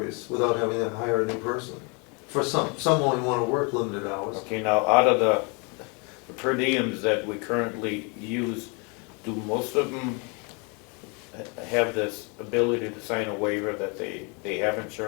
without having to hire a new person. For some only want to work limited hours. Okay, now, out of the per diems that we currently use, do most of them have this ability to sign a waiver that they have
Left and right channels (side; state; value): right; quieter; 32.5 dB